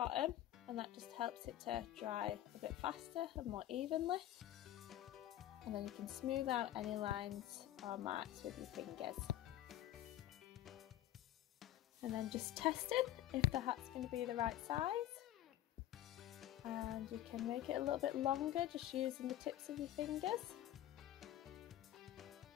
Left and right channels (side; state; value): right; quieter; 13.2 dB